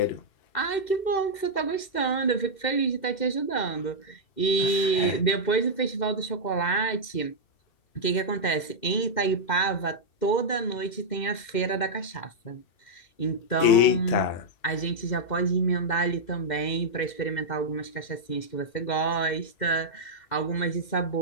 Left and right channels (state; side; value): late; right; 2.1 ms